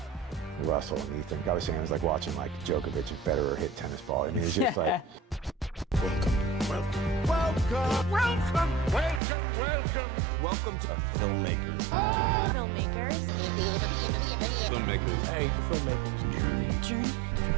Russell and Ethan. I was saying it was like watching like Djokovic and Federer hit tennis ball. I mean, it's just like, Welcome to Filmmaker. Filmmakers. Filmmakers. Hey, Filmmakers. Journey.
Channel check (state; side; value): drops out; left; at 9.2 s